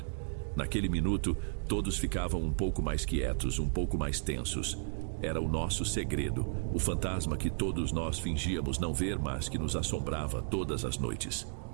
Naquele minuto, todos ficavam um pouco mais quietos, um pouco mais tensos. Era o nosso segredo, o fantasma que todos nós fingíamos não ver, mas que nos assombrava todas as noites.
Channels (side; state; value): left; silent; digital silence